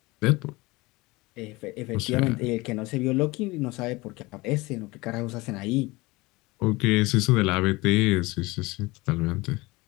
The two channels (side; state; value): right; quieter; 22.4 dB